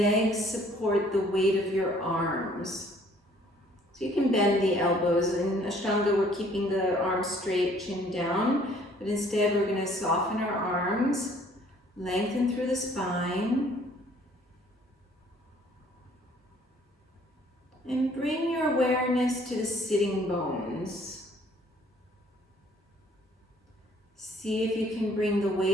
support the weight of your arms. So you can bend the elbows. In Ashtanga, we're keeping the arms straight, chin down, but instead we're going to soften our arms, lengthen through the spine, and bring your awareness to the sitting bones. See if you can bring the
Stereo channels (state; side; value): normal; both; correlation 0.59